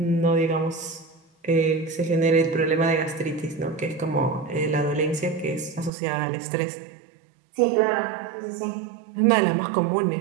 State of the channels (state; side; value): drops out; left; at 5.9 s